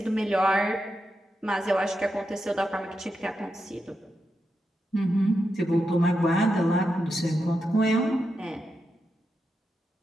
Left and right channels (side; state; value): both; normal; correlation 0.86